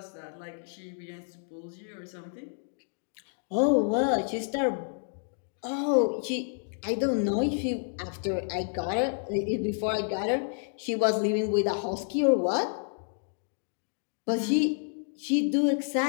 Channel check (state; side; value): silent; right; 58 dB below the other